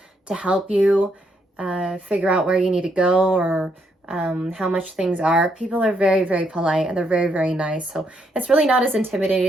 to help you figure out where you need to go, or how much things are. People are very, very polite, and they're very, very nice. So it's really not as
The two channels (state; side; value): normal; both; correlation 0.76